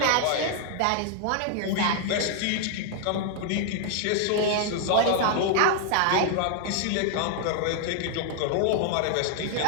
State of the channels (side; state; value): both; different; correlation 0.00